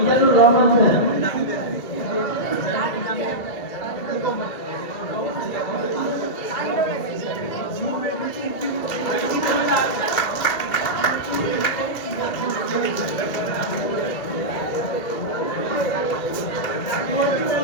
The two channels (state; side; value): late; right; 2.6 ms